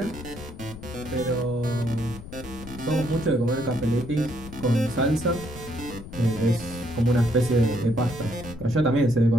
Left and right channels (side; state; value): left; noise; rumble, 14 dB below the sound